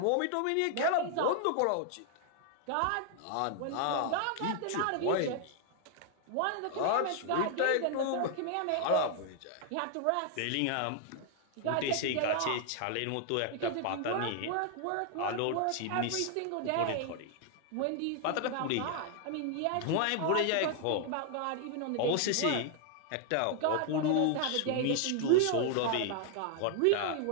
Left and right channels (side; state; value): both; different; correlation 0.00